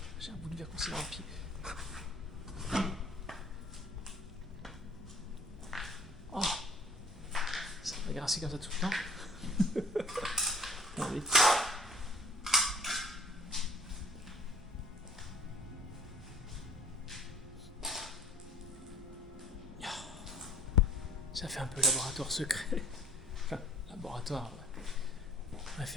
J'ai un bout de verre coincé dans le pied. Oh, ça va grincer comme ça tout le temps. Non, vite. Ça fait un peu laboratoire secret. Enfin, laboratoire, ouais.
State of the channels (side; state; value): both; normal; correlation 0.52